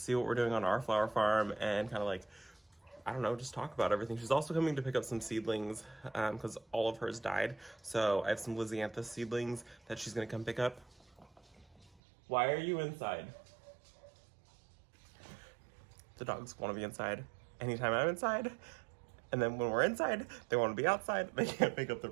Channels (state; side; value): drops out; left; at 11.9 s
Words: what we're doing on our flower farm, and kind of like, I don't know, just talk about everything. She's also coming to pick up some seedlings because all of hers died. So I have some Lysianthus seedlings that she's gonna come pick up. Why are you inside? The dogs want to be inside anytime I'm inside. And then when we're inside, they want to be outside. They can't make up their